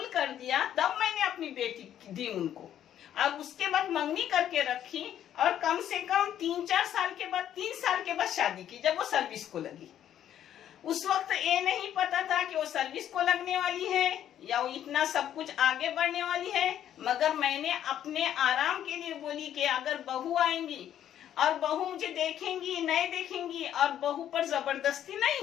कर दिया, तब मैंने अपनी बेटी दी उनको। अब उसके बाद मंगनी करके रखी और कम से कम 3-4 साल के बाद, 3 साल के बाद शादी की, जब वो सर्विस को लगी। उस वक्त ये नहीं पता था कि वो सर्विस को लगने वाली है या वो इतना सब कुछ आगे बढ़ने वाली है। मगर मैंने अपने आराम के लिए बोली कि अगर बहू आएंगी और बहू मुझे देखेंगी, नहीं देखेंगी और बहू पर जबरदस्ती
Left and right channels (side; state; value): right; quieter; 10.7 dB